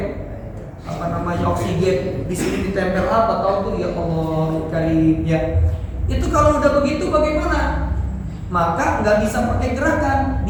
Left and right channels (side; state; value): both; identical; correlation 1.00